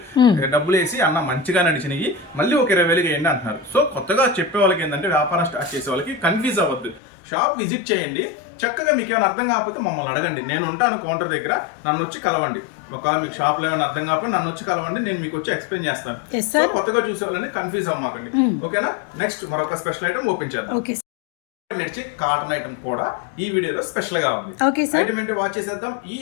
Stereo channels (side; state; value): right; drops out; at 7.0 s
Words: డబ్బులు వేసి, అన్న మంచిగా నడిచినవి మళ్ళీ ఒక 20,000కి వేయండి అంటున్నారు. సో కొత్తగా చెప్పే వాళ్ళకి ఏంటంటే, వ్యాపారం స్టార్ట్ చేసే వాళ్ళకి కన్ఫ్యూజ్ అవ్వద్దు, షాప్ విజిట్ చేయండి. చక్కగా మీకు ఏమైనా అర్థం కాకపోతే మమ్మల్ని అడగండి, నేను ఉంటాను కౌంటర్ దగ్గర, నన్ను వచ్చి కలవండి. ఒకవేళ మీకు షాప్లో ఏమైనా అర్థం కాకపోతే నన్ను వచ్చి కలవండి, నేను మీకు వచ్చి ఎక్స్ప్లెయిన్ చేస్తాను. సో కొత్తగా చూసే వాళ్ళని కన్ఫ్యూజ్ అవ్వమాకండి, ఓకేనా? నెక్స్ట్ మరొక స్పెషల్ ఐటమ్ ఓపెన్ చేద్దాం. నడిచే కాటన్ ఐటమ్ కూడా ఈ వీడియోలో స్పెషల్ గా ఉంది. ఐటమ్ ఏంటో వాచ్ చేసేద్దాం. ఈ